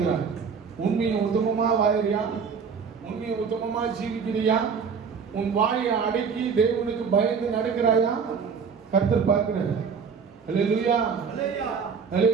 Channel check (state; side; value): quieter; left; 6.0 dB